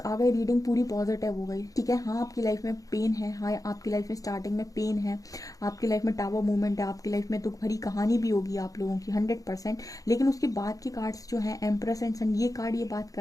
गए, रीडिंग पूरी पॉजिटिव हो गई। ठीक है, हाँ आपकी लाइफ में पेन है, हाँ आपकी लाइफ में स्टार्टिंग में पेन है, आपकी लाइफ में टावर मूवमेंट है, आपकी लाइफ में दुख भरी कहानी भी होगी आप लोगों की 100%। लेकिन उसके बाद के कार्ड्स जो हैं, एम्प्रेस एंड सन, ये कार्ड ये बात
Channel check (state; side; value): late; right; 0.17 ms